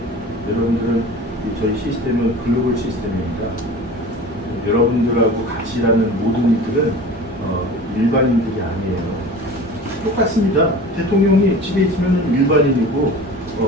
여러분들은 저희 시스템은 글로벌 시스템이니까 여러분들하고 같이 일하는 모든 이들은 일반인들이 아니에요. 똑같습니다. 대통령이 집에 있으면 일반인이고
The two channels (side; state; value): both; normal; correlation 0.38